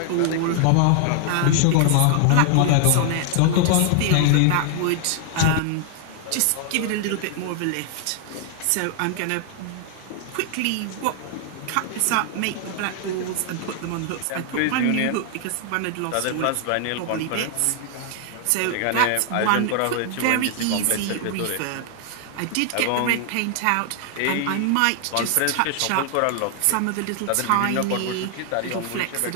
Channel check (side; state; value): both; different; correlation 0.00